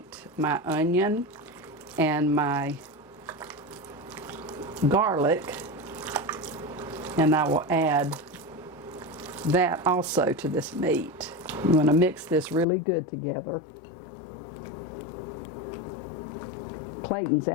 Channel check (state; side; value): drops out; right; at 12.7 s